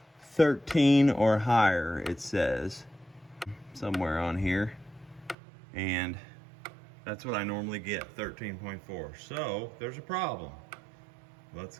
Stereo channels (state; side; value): drops out; left; at 5.4 s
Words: 13 or higher, it says, somewhere on here. And that's what I normally get, 13.4. So there's a problem. Let's